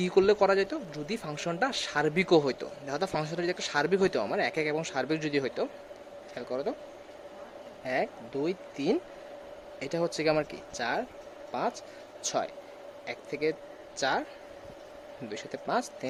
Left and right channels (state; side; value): identical; both; correlation 1.00